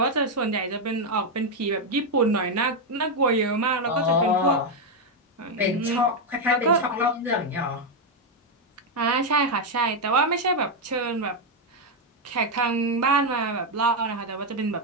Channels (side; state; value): both; normal; correlation 0.03